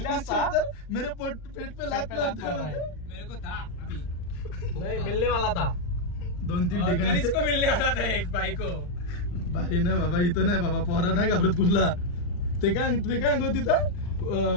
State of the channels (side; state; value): right; late; 39 ms